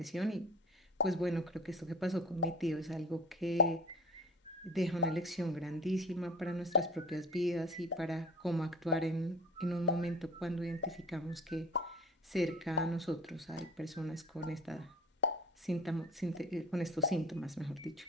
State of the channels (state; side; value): normal; both; correlation 0.40